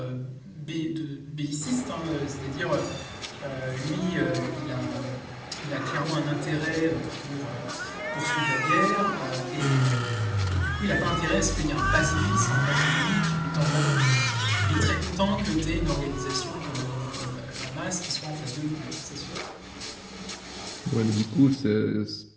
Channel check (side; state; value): both; identical; correlation 1.00